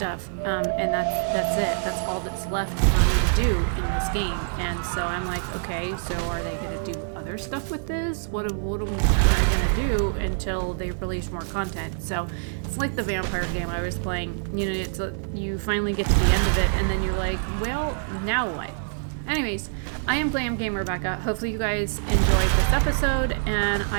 and that's it. That's all that's left for me to do in this game. And so I'm like, okay, so are they gonna do other stuff with this? What am I gonna do until they release more content? So it's like the vampire game I was playing. You know, it's you finally get to the end of it, and then you're like, well, now what? Anyways, I am Glam Game Rebecca. Hopefully you guys enjoyed this episode, and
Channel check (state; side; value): silent; left; 57 dB below the other